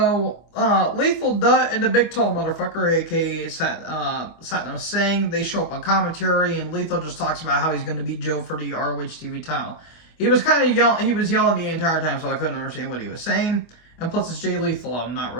Lethal Dutt and the Big Tall Motherfucker, a.k.a. Satnam Singh, they show up on commentary, and Lethal just talks about how he's going to beat Joe for the ROH TV title. He was kind of yelling the entire time, so I couldn't understand what he was saying. And plus, it's Jay Lethal. I'm not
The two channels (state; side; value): late; right; 25 ms